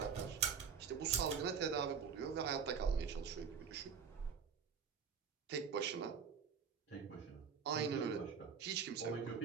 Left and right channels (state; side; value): quieter; left; 6.5 dB